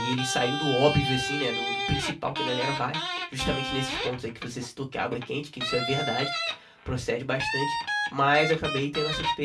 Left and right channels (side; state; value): both; identical; correlation 1.00